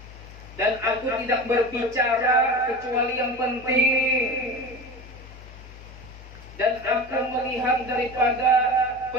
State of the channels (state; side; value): normal; both; correlation 0.31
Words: Dan aku tidak berbicara kecuali yang penting. Dan aku melihat daripada